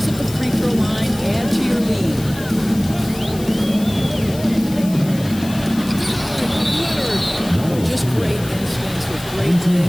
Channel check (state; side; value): noise; left; hiss, 15 dB below the sound